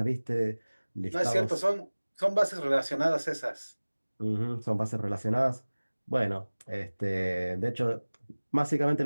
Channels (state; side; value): inverted; both; correlation -1.00